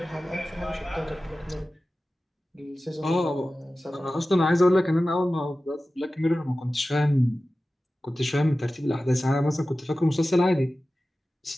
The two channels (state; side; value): normal; both; correlation 0.95